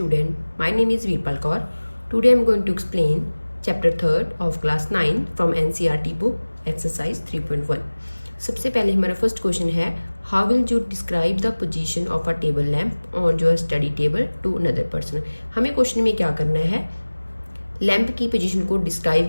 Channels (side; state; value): both; inverted; correlation -1.00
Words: My name is Veerpal Kaur. Today I am going to explain chapter 3rd of class 9 from NCERT book exercise 3.1. सबसे पहले हमारा first question है, how will you describe the position of a table lamp on your study table to another person. हमें question में क्या करना है, lamp की पोजीशन को